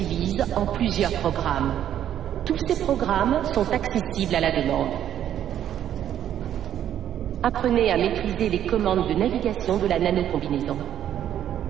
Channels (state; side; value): quieter; left; 10.4 dB